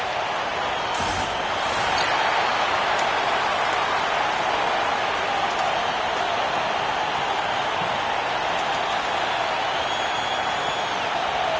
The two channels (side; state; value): both; identical; correlation 1.00